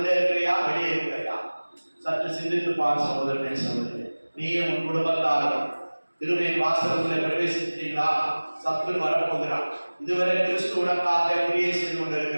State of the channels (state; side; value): inverted; both; correlation -1.00